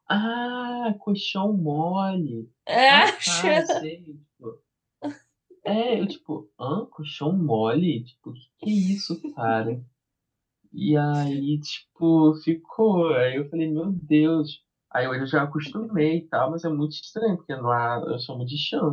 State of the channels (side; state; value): both; identical; correlation 1.00